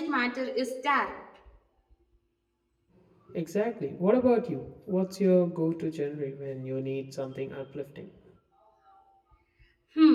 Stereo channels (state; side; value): identical; both; correlation 1.00